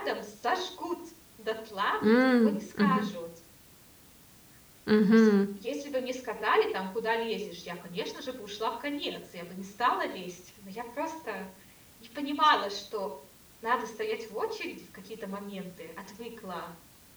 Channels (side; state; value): both; identical; correlation 1.00